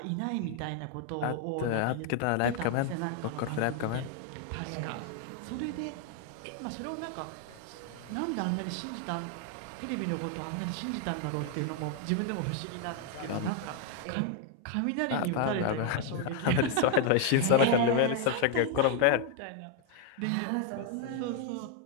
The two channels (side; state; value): both; different; correlation 0.00